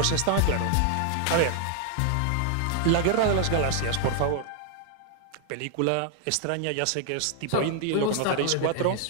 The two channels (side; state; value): both; different; correlation 0.00